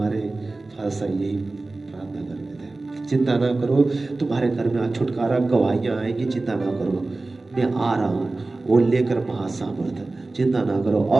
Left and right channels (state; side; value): quieter; left; 3.2 dB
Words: फादर साहब यही प्रार्थना करते थे, चिंता ना करो, तुम्हारे घर में आज छुटकारा, गवाहियां आएंगी, चिंता ना करो, मैं आ रहा हूँ वो लेकर महासामर्थ, चिंता ना करो।